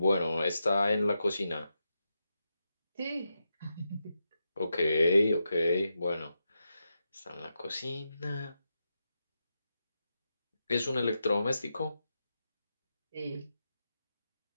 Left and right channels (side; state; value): both; inverted; correlation -0.87